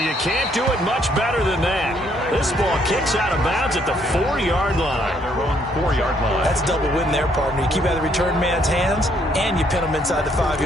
you can't do it much better than that. This ball kicks out of bounds at the 4-yard line. Their own 4-yard line. That's a double win there, partner. You keep out of the return man's hands, and you pin him inside the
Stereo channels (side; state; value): both; normal; correlation 0.69